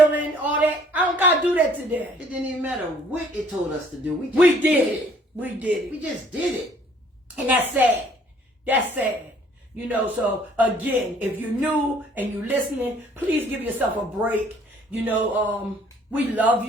all that. I don't got to do that today. It didn't even matter what it told us to do. We did it. We did it. We just did it. And that's sad. That's sad. You know, so again, if you're new and you're listening, please give yourself a break. You know, we love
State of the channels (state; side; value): normal; both; correlation 0.59